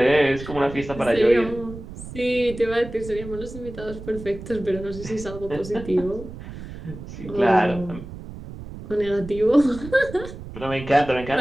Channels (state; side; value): noise; right; rumble, 12 dB below the sound